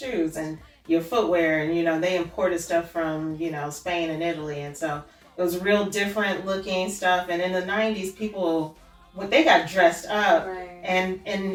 and your footwear, and you know they imported stuff from Spain and Italy, and so it was real different looking stuff. And in the '90s, people when they got dressed up, Right.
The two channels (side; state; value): both; identical; correlation 1.00